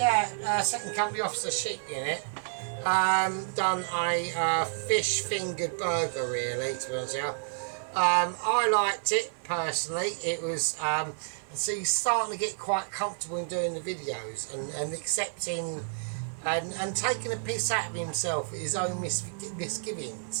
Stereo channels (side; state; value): left; silent; 58 dB below the other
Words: second company officer Sheep Unit done a fish fingered burger, really, to be honest with you. I liked it personally. It was so he's starting to get quite comfortable in doing the videos and accepting and taking a piss out of himself at his own